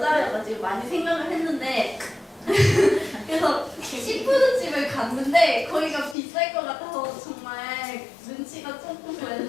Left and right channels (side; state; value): right; drops out; at 6.2 s